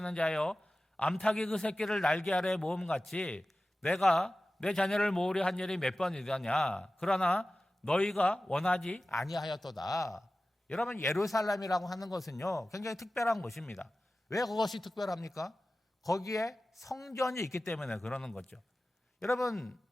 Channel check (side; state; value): both; normal; correlation 0.95